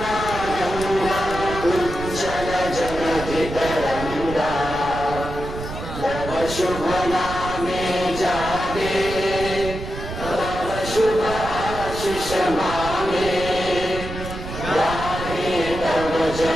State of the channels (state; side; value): noise; right; rumble, 9 dB below the sound